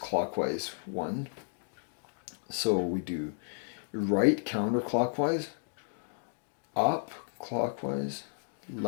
one. So we do right counterclockwise, up clockwise,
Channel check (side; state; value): right; silent; digital silence